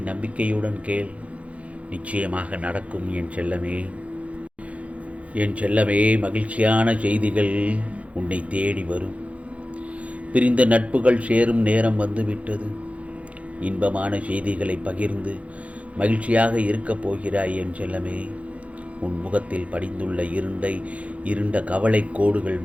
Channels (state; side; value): late; left; 0.064 ms